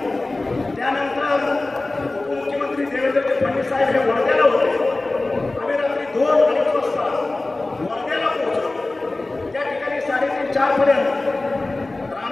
त्यानंतर उपमुख्यमंत्री देवेंद्र फडणवीस साहेब हे वर्ध्याला होते. आम्ही रात्री 2-2:30 वाजता वर्ध्याला पोहोचलो. त्या ठिकाणी 3:30-4 पर्यंत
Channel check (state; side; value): quieter; right; 3.0 dB